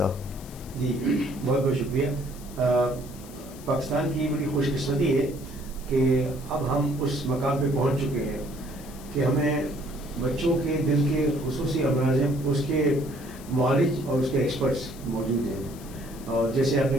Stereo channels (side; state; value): left; noise; hiss, 19 dB below the sound